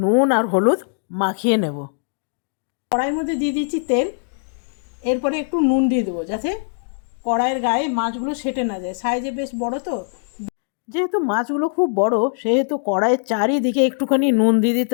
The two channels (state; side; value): silent; right; digital silence